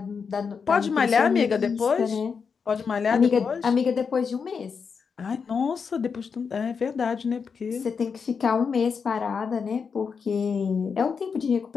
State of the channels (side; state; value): right; quieter; 5.9 dB